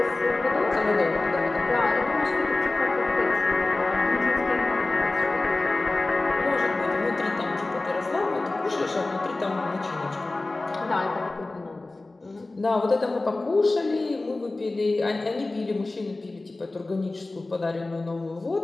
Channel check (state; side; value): quieter; right; 3.1 dB